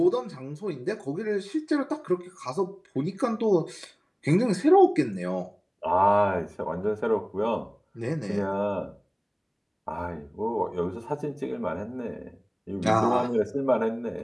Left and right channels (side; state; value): both; identical; correlation 1.00